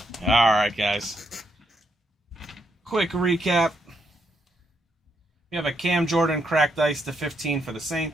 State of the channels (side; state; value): both; normal; correlation 0.78